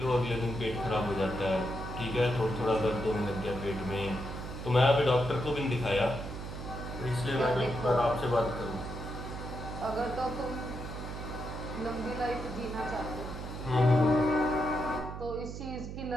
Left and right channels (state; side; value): noise; right; hum, 8 dB below the sound